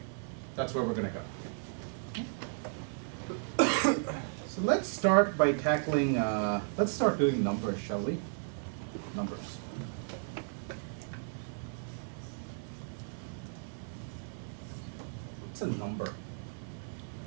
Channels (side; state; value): left; silent; 55 dB below the other